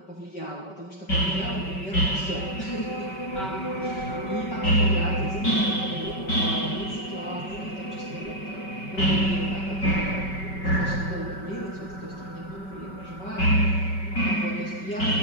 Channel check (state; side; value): late; right; 5.2 ms